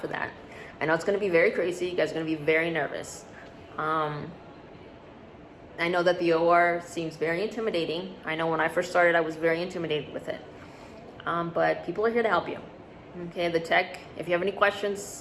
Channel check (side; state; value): both; identical; correlation 1.00